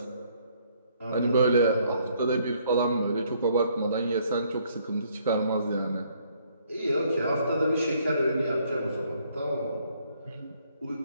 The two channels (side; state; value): both; inverted; correlation -0.66